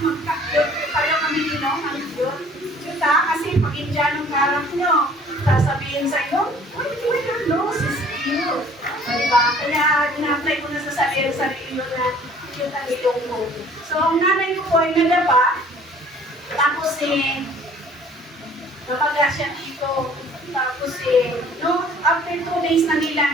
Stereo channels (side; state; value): both; normal; correlation 0.53